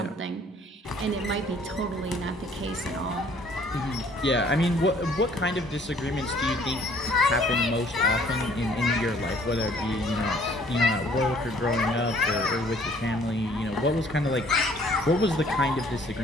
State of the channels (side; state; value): both; normal; correlation 0.58